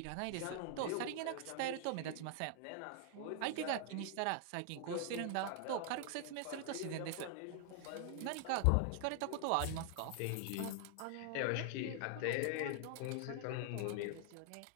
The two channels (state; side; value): different; both; correlation 0.00